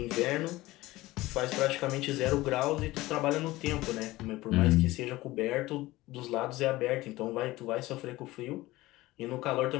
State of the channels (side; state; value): right; quieter; 18.6 dB